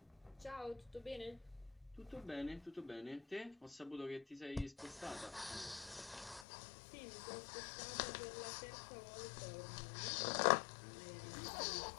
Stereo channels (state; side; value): drops out; right; at 6.5 s